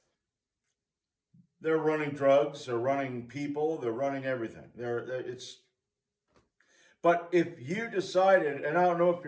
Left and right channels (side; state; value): both; identical; correlation 1.00